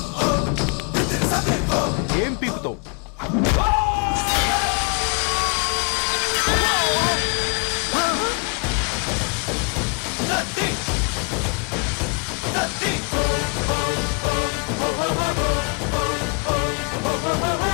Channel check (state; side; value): quieter; right; 34.4 dB